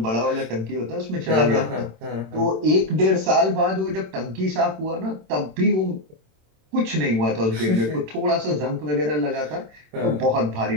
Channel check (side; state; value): left; late; 27 ms